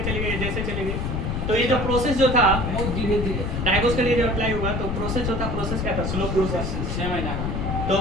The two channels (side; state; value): left; noise; rumble, 2 dB below the sound